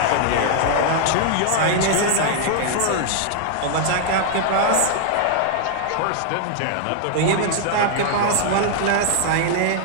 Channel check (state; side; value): different; both; correlation 0.00